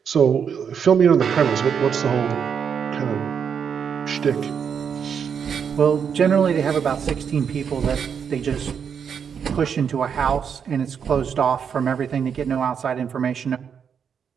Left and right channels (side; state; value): left; quieter; 7.2 dB